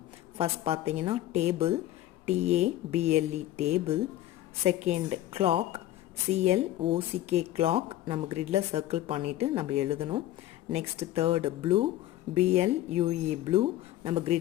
ஃபஸ்ட் பார்த்தீங்கன்னா table, TABLE table. Second clock, CLOCK clock, நம்ம கிரிட்டில் சர்க்கிள் பண்ணிவிட்டு நம்ம எழுதணும். Next third blue, BLUE blue, நம்ம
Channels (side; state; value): right; quieter; 14.1 dB